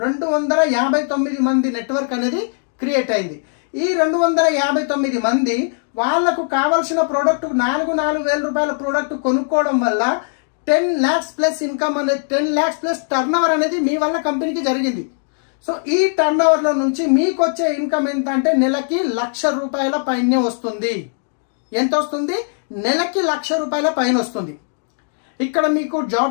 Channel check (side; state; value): right; silent; digital silence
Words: 259 మంది నెట్వర్క్ అనేది క్రియేట్ అయింది. ఈ 259 మంది వాళ్లకు కావాల్సిన ప్రోడక్ట్ 4,000 రూపాయల ప్రోడక్ట్ కొనుక్కోవడం వల్ల 10 lakhs ప్లస్ ఇన్కమ్ అనేది, 10 lakhs ప్లస్ టర్నోవర్ అనేది మీ వల్ల కంపెనీకి జరిగింది. సో ఈ టర్నోవర్ లో నుంచి మీకు వచ్చే ఇన్కమ్ ఎంత అంటే నెలకి 1,00,000 రూపాయల పైనే వస్తుంది. ఎంత వస్తుంది? నెలకి 1,00,000 రూపాయల పైన వస్తుంది. ఇక్కడ మీకు